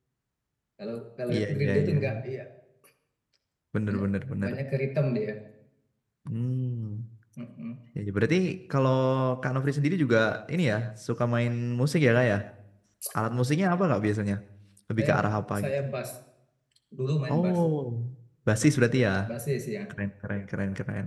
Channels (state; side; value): identical; both; correlation 1.00